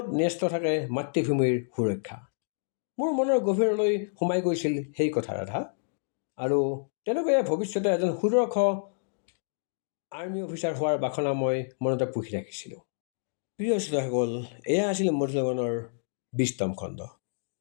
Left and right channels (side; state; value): right; silent; digital silence